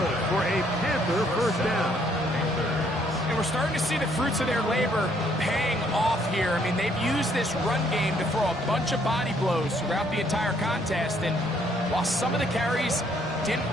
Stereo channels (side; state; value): both; normal; correlation 0.67